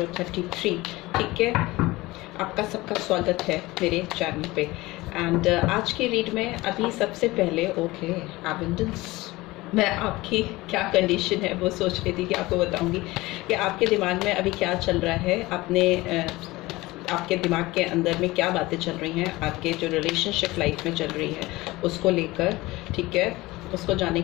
33। ठीक है, आपका सबका स्वागत है मेरे चैनल पे। एंड आज की रीड में अभी सबसे पहले एबंडेंस, मैं आपकी क्या कंडीशन है वो सोच रही थी कि आपको बताऊंगी कि आपके दिमाग में अभी क्या चल रहा है, आपके दिमाग के अंदर में क्या बातें चल रही हैं, आपके जो रिलेशनशिप लाइफ में चल रही है उसको लेकर। ठीक है, उसको जानने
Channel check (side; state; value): right; quieter; 20.1 dB